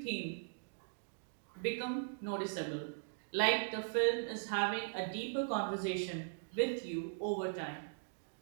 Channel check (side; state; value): left; silent; digital silence